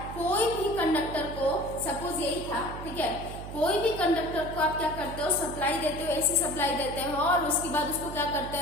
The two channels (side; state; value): right; noise; hum, 10 dB below the sound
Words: कोई भी कंडक्टर को, सपोज यही था, ठीक है, कोई भी कंडक्टर को आप क्या करते हो, सप्लाई देते हो, एसी सप्लाई देते हो, और उसके बाद उसको क्या करते